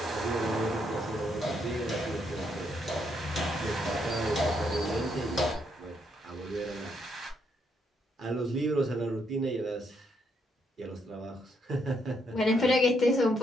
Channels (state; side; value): normal; both; correlation 0.75